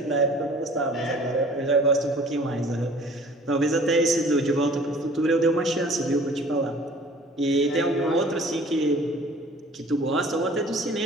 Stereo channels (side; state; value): both; normal; correlation 0.50